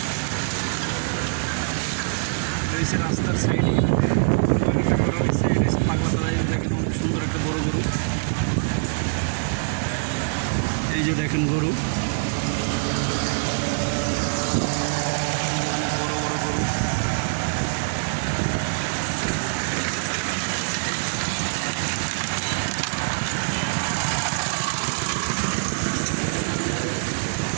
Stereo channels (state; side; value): silent; left; digital silence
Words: রয়েছে রাস্তার সাইডে একটা করা হয়েছে। এটা হচ্ছে পাগলা তলায়, দেখেন অনেক সুন্দর একটা বড় গরু। এই যে দেখেন গরু, বড় বড় গরু।